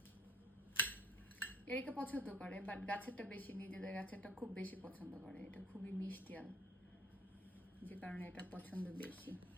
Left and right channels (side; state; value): both; normal; correlation 0.57